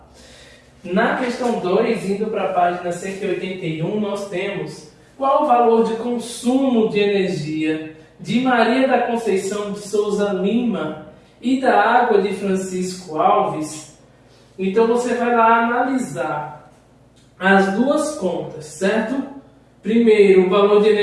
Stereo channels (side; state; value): both; identical; correlation 1.00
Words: Na questão 2, indo para a página 181, nós temos qual o valor de consumo de energia de Maria da Conceição de Souza Lima e da água de Francisco Alves. Então você vai lá analisar as duas contas, certo? Primeiro, o valor de